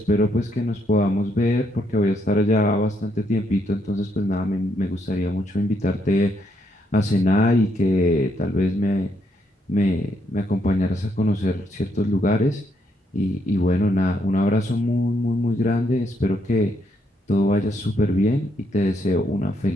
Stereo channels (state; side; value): normal; both; correlation 0.75